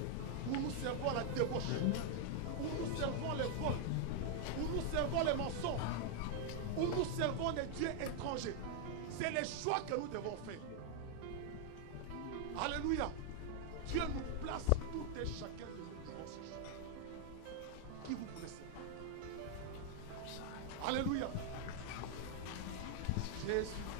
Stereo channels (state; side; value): different; both; correlation 0.00